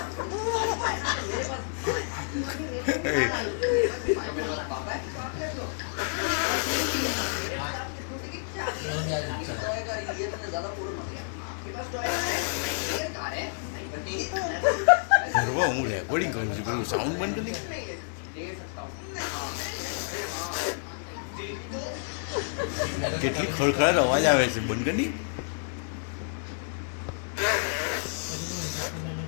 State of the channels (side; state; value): right; silent; 58 dB below the other